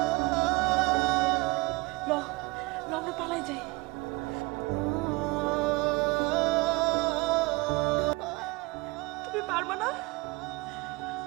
ল ল আমরা পালাই যাই। তুমি পারবা না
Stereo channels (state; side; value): quieter; left; 23.8 dB